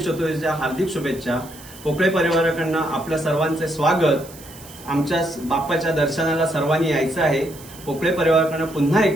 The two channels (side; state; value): right; noise; hiss, 19 dB below the sound